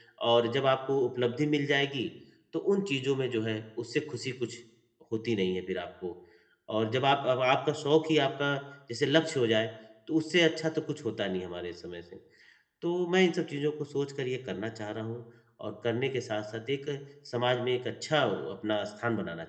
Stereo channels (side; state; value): both; identical; correlation 1.00